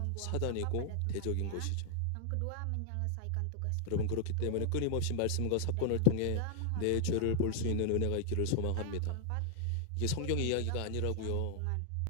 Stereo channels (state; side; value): different; both; correlation 0.00